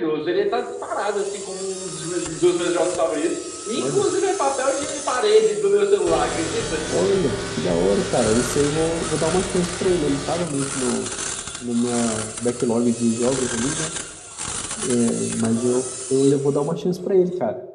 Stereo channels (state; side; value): identical; both; correlation 1.00